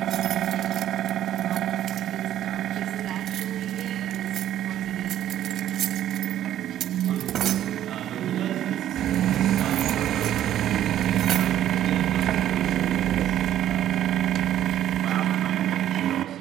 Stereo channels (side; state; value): left; quieter; 11.8 dB